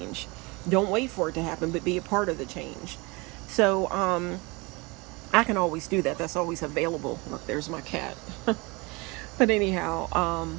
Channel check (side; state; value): left; quieter; 26.2 dB